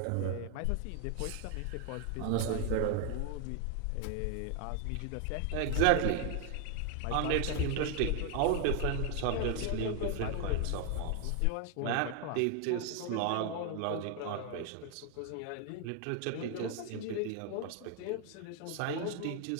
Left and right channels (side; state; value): both; different; correlation 0.01